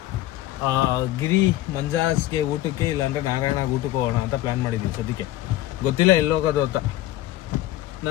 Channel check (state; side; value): quieter; right; 15.2 dB